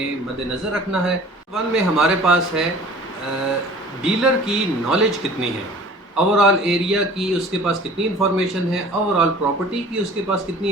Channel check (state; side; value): normal; both; correlation 0.46